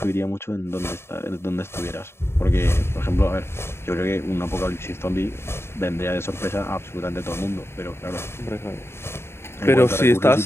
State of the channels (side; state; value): right; late; 0.12 ms